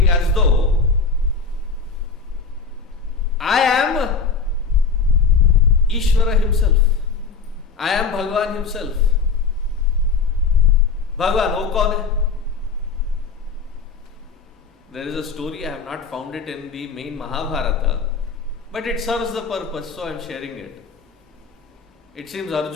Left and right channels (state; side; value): quieter; right; 5.0 dB